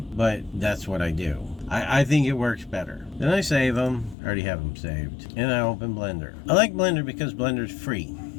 but that's what I do. I think it works better. Then I save them. I already have them saved. And I open Blender. I like Blender because Blender's free.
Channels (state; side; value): drops out; right; at 4.2 s